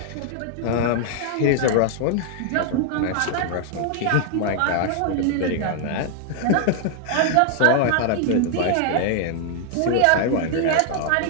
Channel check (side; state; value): both; different; correlation 0.00